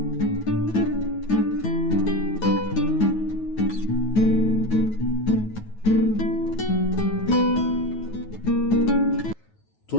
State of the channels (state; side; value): late; right; 9.4 ms